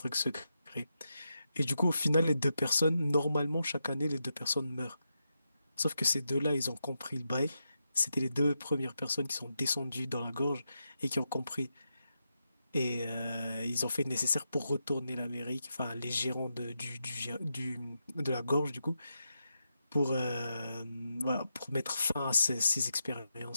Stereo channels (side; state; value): both; inverted; correlation -0.86